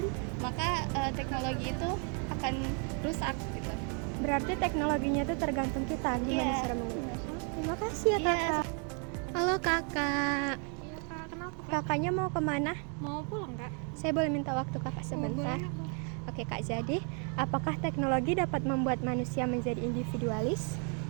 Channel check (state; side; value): quieter; left; 39.5 dB